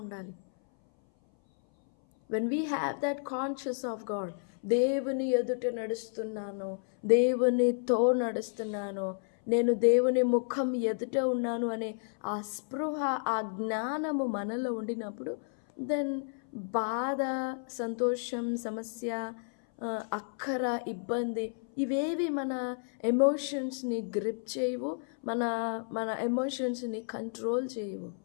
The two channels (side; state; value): right; silent; 57 dB below the other